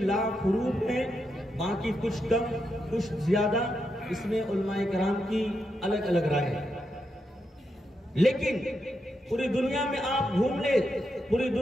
لاکھ حروف ہیں، باقی کچھ کم کچھ زیادہ، اس میں علماء کرام کی الگ الگ رائے ہے۔ لیکن پوری دنیا میں آپ گھوم لیں، پوری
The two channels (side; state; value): both; normal; correlation 0.84